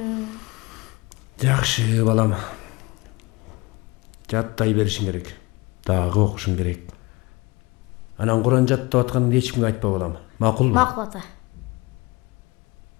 Жакшы балам. Жаттай беришиң керек. Дагы окушуң керек. Анан Куран жаттап атканыңды эч кимге айтпа балам. Макулбу? Макул ата.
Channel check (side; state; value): right; quieter; 23.9 dB